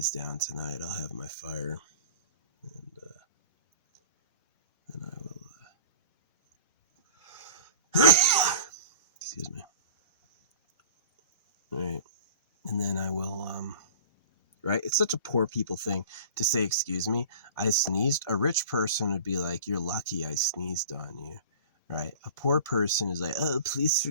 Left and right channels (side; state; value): both; inverted; correlation -0.40